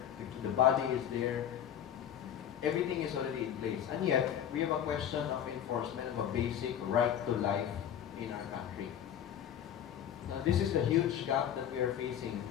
the body is there, everything is already in place. And yet, we have a question of enforcement of a basic right to life in our country. Now, this is the huge gap that we are facing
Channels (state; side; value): quieter; right; 9.8 dB